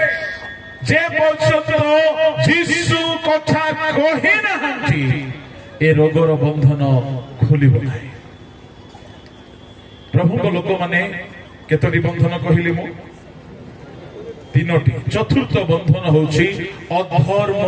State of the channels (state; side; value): identical; both; correlation 1.00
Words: ଯେ ପର୍ଯ୍ୟନ୍ତ ଯୀଶୁ କଥା କହି ନାହାନ୍ତି ଏ ରୋଗର ବନ୍ଧନ ଖୋଲିବ ନାହିଁ। ପ୍ରଭୁଙ୍କ ଲୋକମାନେ କେତୋଟି ବନ୍ଧନ କହିଲି ମୁଁ? 3ଟି। ଚତୁର୍ଥ ବନ୍ଧନ ହଉଛି